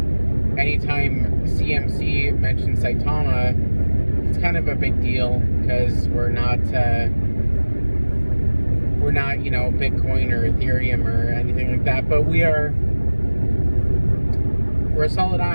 anytime CMC mentions Saitama, it's kind of a big deal because we're not Bitcoin or Ethereum or anything like that, but we're a solid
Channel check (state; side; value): inverted; both; correlation -1.00